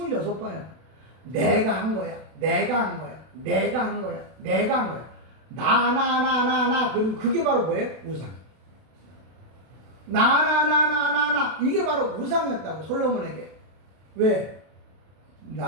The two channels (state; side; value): late; left; 32 ms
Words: 내가 한 거야. 내가 한 거야. 내가 한 거야. 내가 한 거야. 나. 그리고 그게 바로 뭐예요? 우상. 나. 이게 바로 우상이었다고 솔로몬에게. 왜?